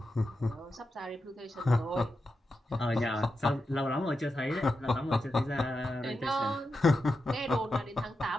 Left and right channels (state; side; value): normal; both; correlation 0.88